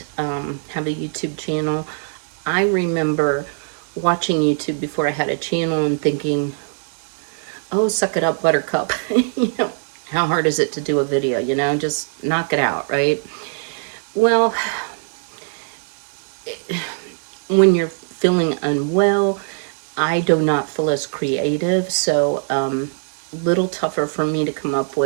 have a YouTube channel, I remember watching YouTube before I had a channel and thinking, oh, suck it up, buttercup. How hard is it to do a video? Just knock it out, right? Well, when you're feeling unwell, I do not feel as creative, so little tougher for me to come up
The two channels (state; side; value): silent; left; digital silence